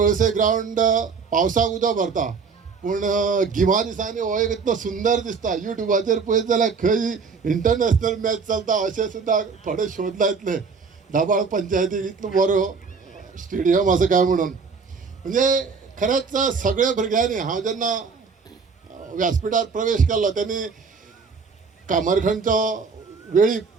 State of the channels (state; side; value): quieter; left; 5.2 dB